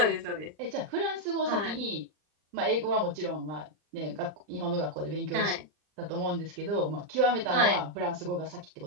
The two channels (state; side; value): late; left; 39 ms